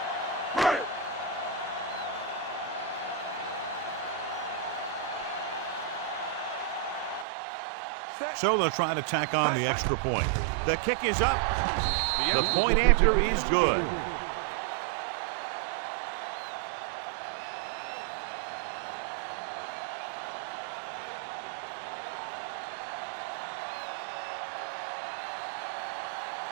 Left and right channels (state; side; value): drops out; left; at 7.2 s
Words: So they'll try to tack on the extra point. The kick is up. The point after is good.